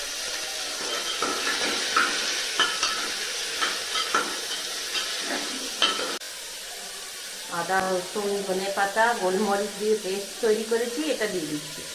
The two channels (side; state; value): both; identical; correlation 1.00